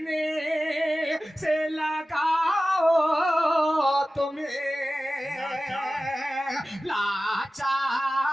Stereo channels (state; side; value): normal; both; correlation 0.95